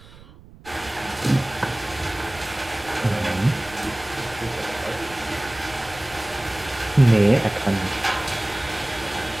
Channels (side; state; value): right; noise; rumble, 21 dB below the sound